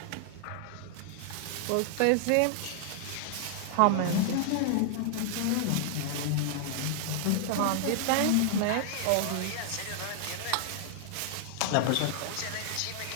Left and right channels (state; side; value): different; both; correlation -0.01